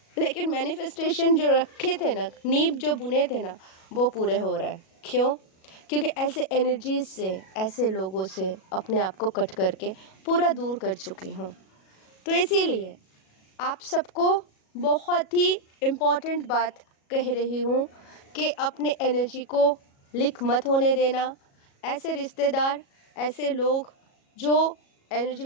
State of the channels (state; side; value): late; right; 37 ms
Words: लेकिन मैनिफेस्टेशन जो रखे थे ना, नींव जो बुने थे ना, वो पूरे हो रहा है। क्यों? क्योंकि ऐसे एनर्जीज से, ऐसे लोगों से अपने आप को कट करके पूरा दूर कर चुकी हूँ। तो इसीलिए आप सबको बहुत ही इम्पोर्टेंट बात कह रही हूँ कि अपने एनर्जी को लीक मत होने देना। ऐसे रिश्तेदार, ऐसे लोग जो एनर्जी